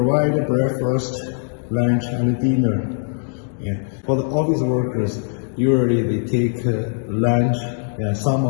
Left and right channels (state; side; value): silent; right; digital silence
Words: breakfast, lunch, and dinner. Yeah. For the office workers, usually they take lunch. Yeah, some